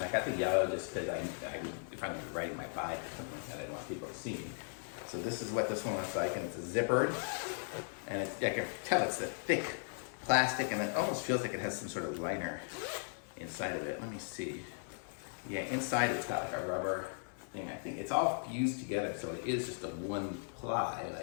I got the yellow just because if I'm riding my bike or something like that, I don't want people to see me. So this is what this one looks like, and it's a zippered, and I can tell it's a thick plastic, and it almost feels like it has some sort of liner inside of it. Let me see. Yeah, inside it's got like a rubber thing. I think it's all fused together, so it is just a one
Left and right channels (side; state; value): right; silent; 53 dB below the other